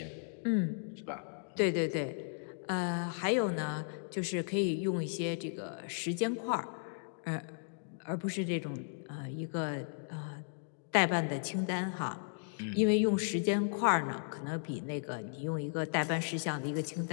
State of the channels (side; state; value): right; silent; digital silence